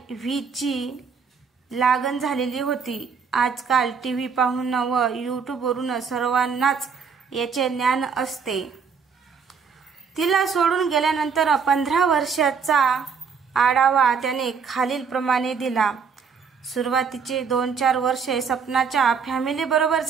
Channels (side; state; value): left; quieter; 6.0 dB